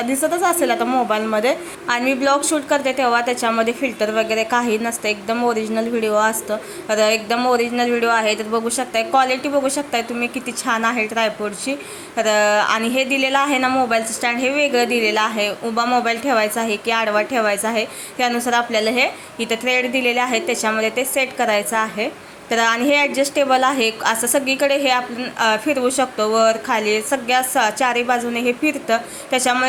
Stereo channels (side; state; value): both; identical; correlation 1.00